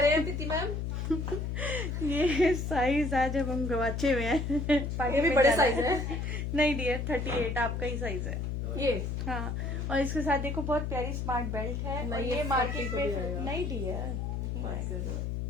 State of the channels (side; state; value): left; noise; hum, 2 dB below the sound